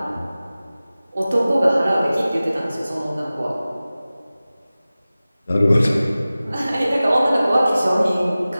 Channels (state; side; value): inverted; both; correlation -0.97